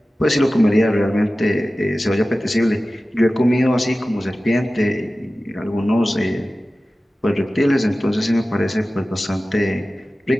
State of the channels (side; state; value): both; normal; correlation 0.96